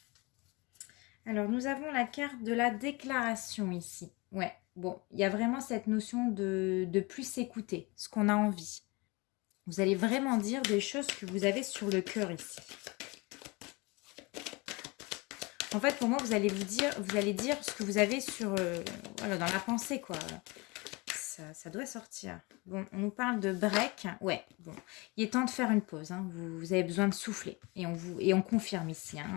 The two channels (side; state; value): right; quieter; 26.0 dB